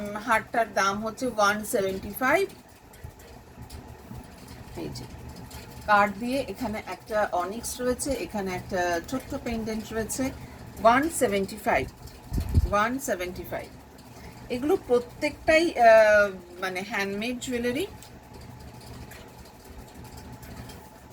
হারটার দাম হচ্ছে 175। এই যে কার্ড দিয়ে এখানে একটা অনিক্স রয়েছে, এখানে একটা ছোট্ট পেন্ডেন্ট রয়েছে। 175। এগুলো প্রত্যেকটাই মানে হ্যান্ডমেড জুয়েলারি।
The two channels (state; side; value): identical; both; correlation 1.00